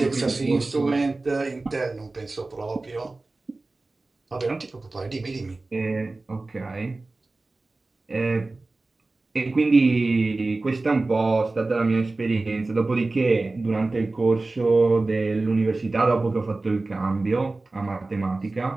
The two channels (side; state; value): left; quieter; 3.3 dB